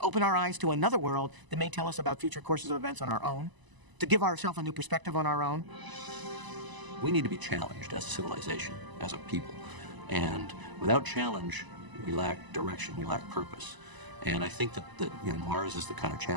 our eyes to another world that may tell us about future courses of events on our own, to give ourselves a new perspective on our own. We need to be challenged as a civilization, as a people. And without challenge, we lack direction, we lack purpose. And I think that Mars is the kind of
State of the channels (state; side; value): late; left; 1.0 ms